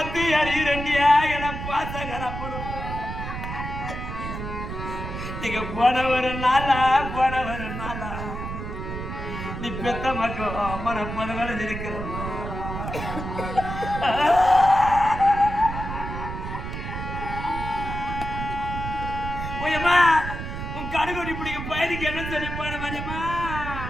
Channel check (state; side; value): noise; right; rumble, 6 dB below the sound